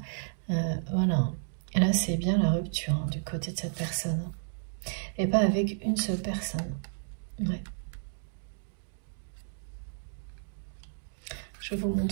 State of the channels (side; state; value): left; silent; digital silence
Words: voilà, et là c'est bien la rupture du côté de cette personne, et pas avec une seule personne, ouais. Je vous